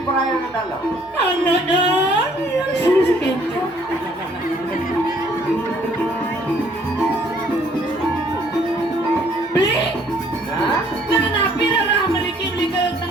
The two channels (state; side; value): normal; both; correlation 0.61